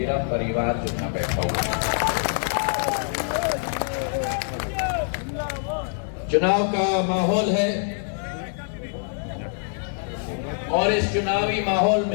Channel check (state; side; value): silent; right; 62 dB below the other